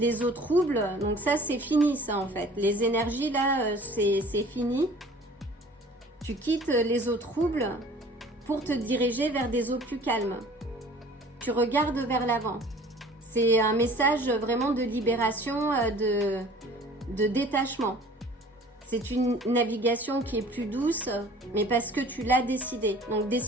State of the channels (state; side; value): normal; both; correlation 0.48